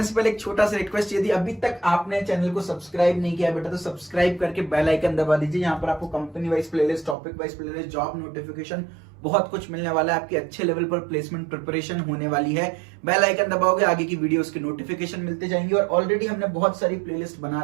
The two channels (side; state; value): left; drops out; at 7.2 s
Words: से पहले एक छोटा सा रिक्वेस्ट, यदि अभी तक आपने चैनल को सब्सक्राइब नहीं किया बेटा तो सब्सक्राइब करके बेल आइकन दबा दीजिए। यहाँ पर आपको company wise playlist, topic wise playlist, job notification, बहुत कुछ मिलने वाला है। आपकी अच्छे लेवल पर प्लेसमेंट प्रिपरेशन होने वाली है। बेल आइकन दबाओगे, आगे की वीडियोस के नोटिफिकेशन मिलते जाएंगे, और ऑलरेडी हमने बहुत सारी प्लेलिस्ट बना